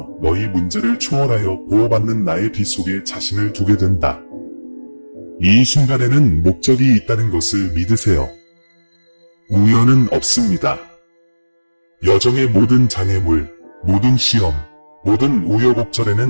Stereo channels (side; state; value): both; inverted; correlation -1.00